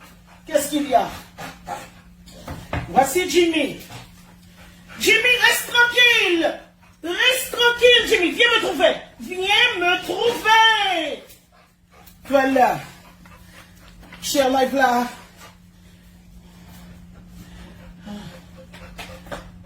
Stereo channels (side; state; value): both; identical; correlation 1.00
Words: Qu'est-ce qu'il y a? Voici Jimmy. Jimmy, reste tranquille. Reste tranquille, Jimmy. Viens me trouver. Viens me trouver. Voilà. Cher live là.